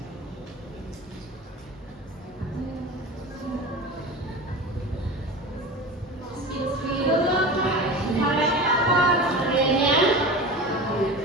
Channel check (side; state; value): both; normal; correlation 0.31